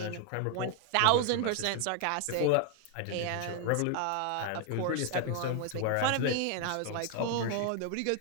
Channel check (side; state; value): both; different; correlation 0.00